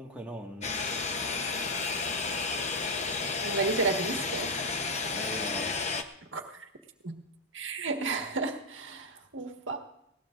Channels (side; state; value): both; normal; correlation 0.01